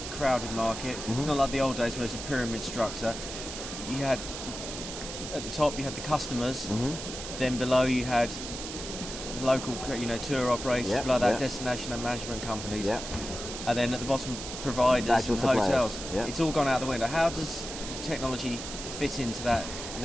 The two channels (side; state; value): right; noise; hiss, 8 dB below the sound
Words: crowded market. Mm-hmm. It's not like the old days where it's a pyramid structure. You had at the top you had the customers, mm-hmm. Then below you had the local tour operators, below that destination and management companies. Yeah. And then at the bottom, providers and hotels. Yep. It's all gone out the window. How does technology fit into that